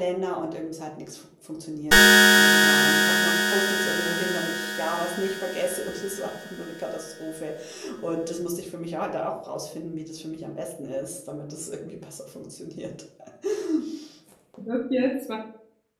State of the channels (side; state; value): both; identical; correlation 1.00